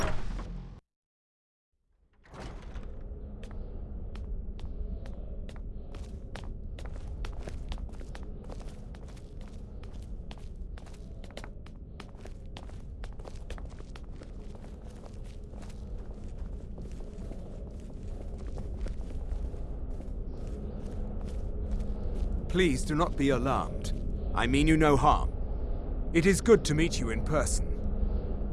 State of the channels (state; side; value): identical; both; correlation 1.00